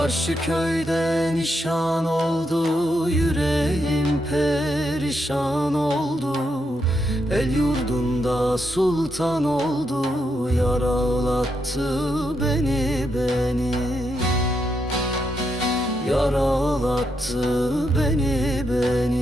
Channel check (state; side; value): normal; both; correlation 0.81